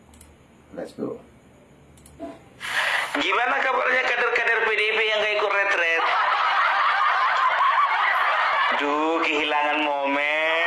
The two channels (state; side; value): identical; both; correlation 1.00